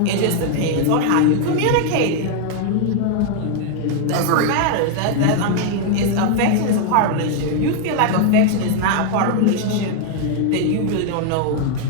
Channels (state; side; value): different; both; correlation 0.00